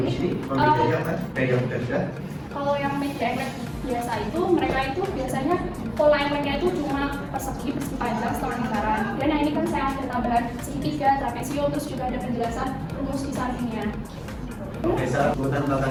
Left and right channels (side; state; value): both; identical; correlation 1.00